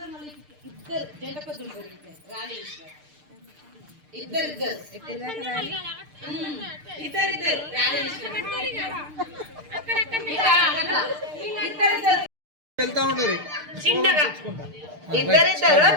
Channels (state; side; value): late; left; 6.6 ms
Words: మళ్ళీ ఇద్దరు జంట పద్దులు రాలి ఇద్దరు చిన్నగా ఇద్దరిద్దరు